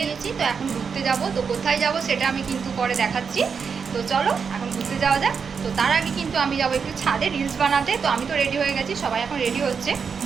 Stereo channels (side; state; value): left; quieter; 6.0 dB